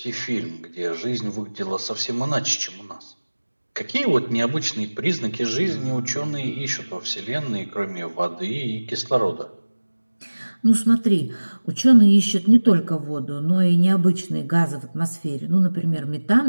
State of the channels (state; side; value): inverted; both; correlation -1.00